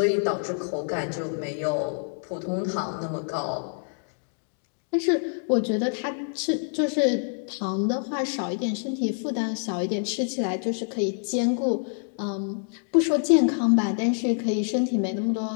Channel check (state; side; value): silent; right; 60 dB below the other